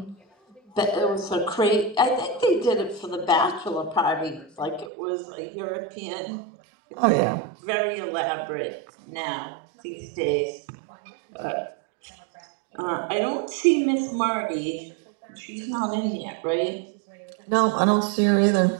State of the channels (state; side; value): drops out; left; at 4.9 s